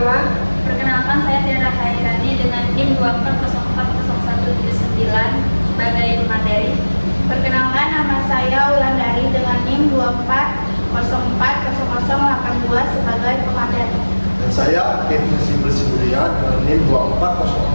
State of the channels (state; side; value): inverted; both; correlation -1.00